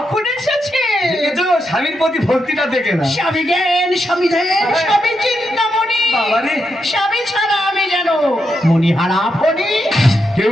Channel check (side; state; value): both; normal; correlation 0.83